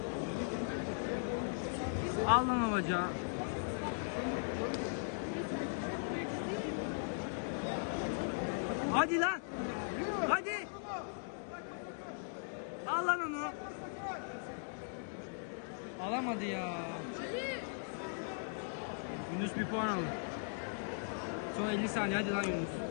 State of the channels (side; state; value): right; silent; digital silence